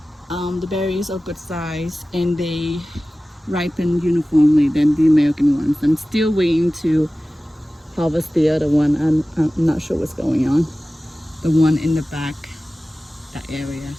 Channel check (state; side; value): normal; both; correlation 0.96